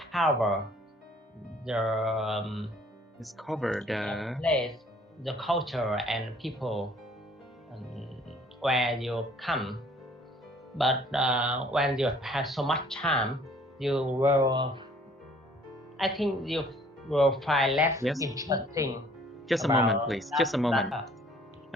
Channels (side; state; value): both; normal; correlation 0.57